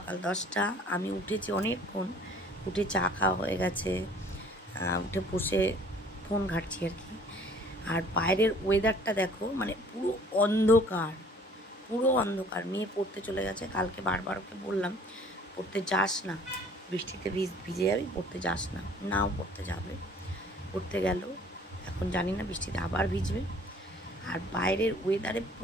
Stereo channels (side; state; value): both; normal; correlation 0.54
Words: 10টা। আমি উঠেছি অনেকক্ষণ, উঠে চা খাওয়া হয়ে গেছে, উঠে বসে ফোন ঘাঁটছি আর কি। আর বাইরের ওয়েদারটা দেখো, মানে পুরো অন্ধকার, পুরো অন্ধকার। মেয়ে পড়তে চলে গেছে, কালকে বারবার ওকে বললাম পড়তে যাস না, বৃষ্টিতে ভিজে যাবি, পড়তে যাস না। নাও পড়তে যাবে, পড়তে গেল, এখন জানি না বৃষ্টিতে আবার ভিজবে। আর বাইরের ওয়েদারে